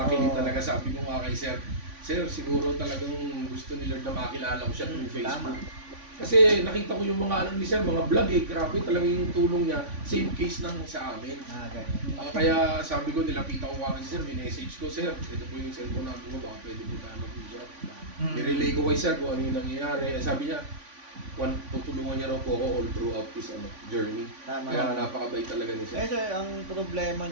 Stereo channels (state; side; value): late; left; 3.5 ms